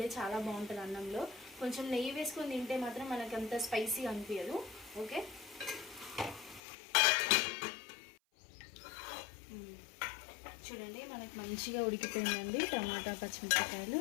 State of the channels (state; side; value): drops out; right; at 6.6 s